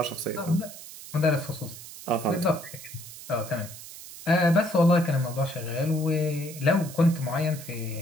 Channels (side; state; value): right; noise; hiss, 14 dB below the sound